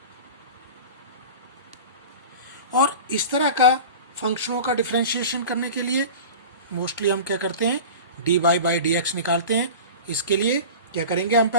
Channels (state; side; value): inverted; both; correlation -0.34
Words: और इस तरह का फंक्शनों का डिफरेंशिएशन करने के लिए मोस्टली हम क्या करते हैं? D y by d x निकालते हैं। इसके लिए क्या करेंगे? हम